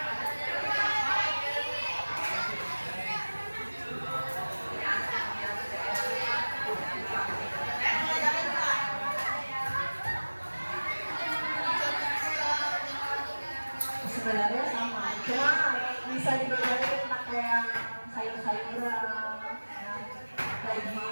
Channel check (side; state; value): both; inverted; correlation -1.00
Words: bisa dibedain pakai yang sayur-sayuran, ya,